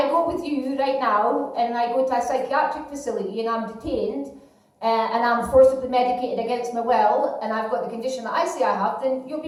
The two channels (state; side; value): identical; both; correlation 1.00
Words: go with you right now, and I go to a psychiatric facility, and I'm detained, and I'm forcibly medicated against my will, and I've got the condition that I say I have, then you'll